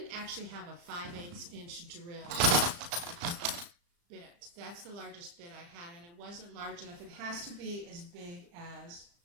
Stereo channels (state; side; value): late; left; 35 ms